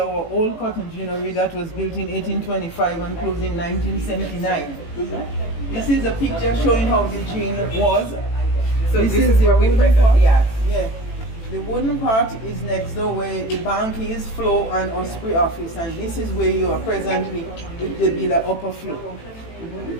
old cotton ginnery that was built in 1825 and closed in 1979. This is a picture showing how the gin was. So this is where we presently at. Yeah. The wooden part is next door where the bank is, floor and Osprey office, and this is where you are presently with the Villa upper floor.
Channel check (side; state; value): right; late; 18 ms